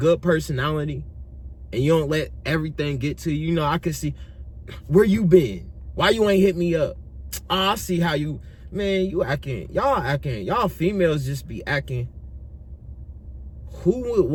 personality and you don't let everything get to you, I can see, where you been? Why you ain't hit me up? Oh, I see how you, man, y'all females just be acting. Who would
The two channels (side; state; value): both; identical; correlation 1.00